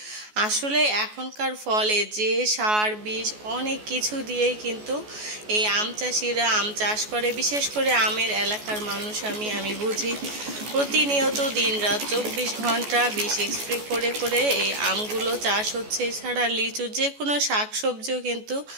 আসলে এখনকার ফলে যে সার বিষ অনেক কিছু দিয়েই কিন্তু এই আম চাষিরা আম চাষ করে। বিশেষ করে আমের এলাকার মানুষ আমি বুঝি প্রতিনিয়ত দিনরাত 24 ঘন্টা বিষ স্প্রে করে করে এই আমগুলো চাষ হচ্ছে। এছাড়া লিচু, যে কোনো শাকসবজিও কিন্তু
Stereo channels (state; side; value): late; left; 14 ms